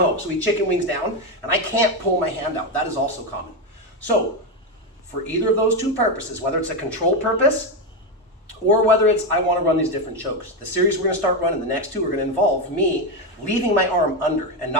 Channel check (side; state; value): both; normal; correlation 0.10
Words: so he chicken wings down, and I can't pull my hand out. That is also common. So for either of those two purposes, whether it's a control purpose or whether it's I want to run these different chokes, the series we're going to start running, the next two are going to involve me leaving my arm under and